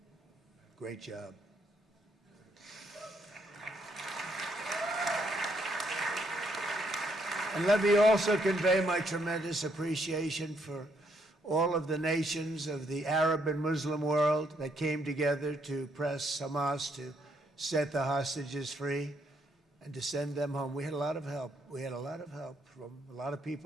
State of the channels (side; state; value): both; normal; correlation 0.73